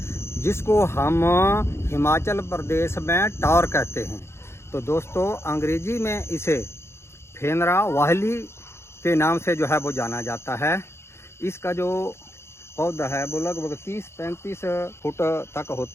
जिसको हम हिमाचल प्रदेश में टॉर कहते हैं। तो दोस्तों, अंग्रेजी में इसे फेनरा वाहली के नाम से जो है वो जाना जाता है। इसका जो पौधा है वो लगभग 30-35 फुट तक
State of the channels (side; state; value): right; late; 0.12 ms